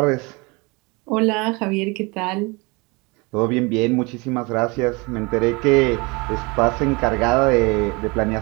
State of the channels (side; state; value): left; quieter; 27.1 dB